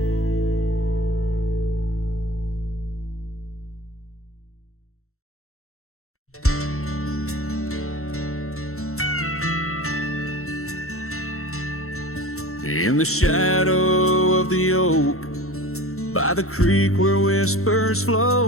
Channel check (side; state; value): right; late; 0.63 ms